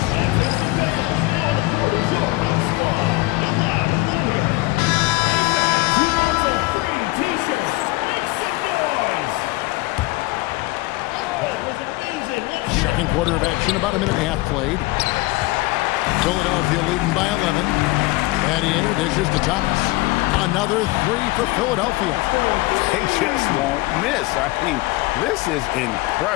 Second quarter of action, about a minute and a half played. Philadelphia leading by 11. Battier dishes to Thomas. Another 3 for Philadelphia. They just won't miss. I mean, this is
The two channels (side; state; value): right; quieter; 21.3 dB